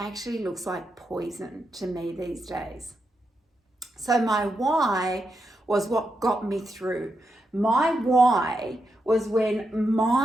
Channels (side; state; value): both; normal; correlation 0.84